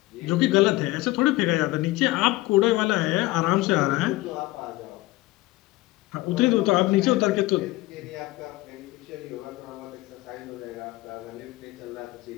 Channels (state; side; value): quieter; right; 19.4 dB